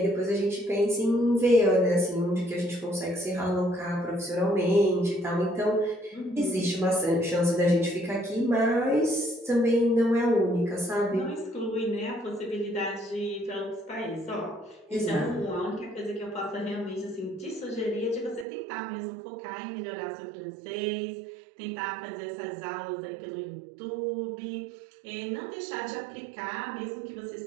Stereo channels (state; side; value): drops out; left; at 18.4 s